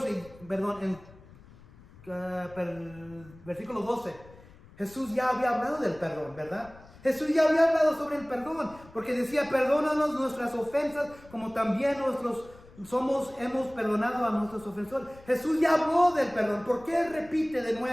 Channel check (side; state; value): left; noise; rumble, 22 dB below the sound